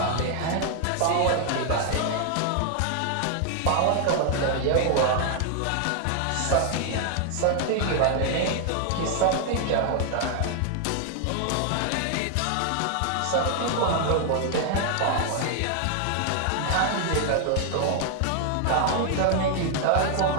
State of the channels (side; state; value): both; different; correlation 0.00